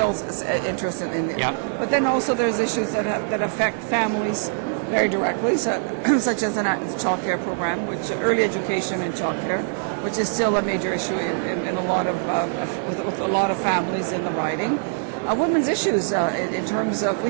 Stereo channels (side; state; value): left; silent; digital silence